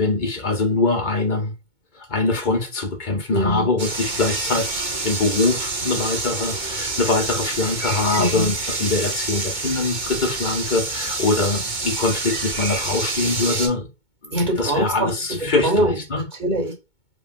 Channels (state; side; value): late; right; 2.2 ms